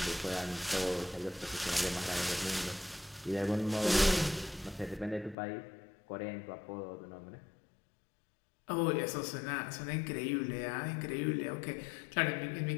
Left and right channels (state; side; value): drops out; right; at 5.4 s